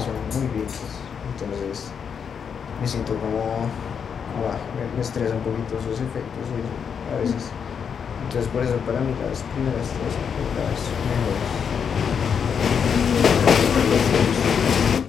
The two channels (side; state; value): right; quieter; 7.0 dB